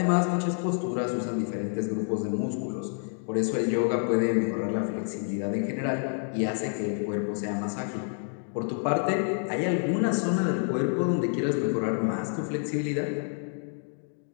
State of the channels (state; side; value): silent; right; 59 dB below the other